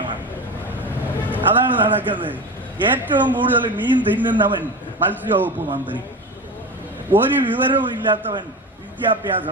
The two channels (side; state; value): both; normal; correlation 0.26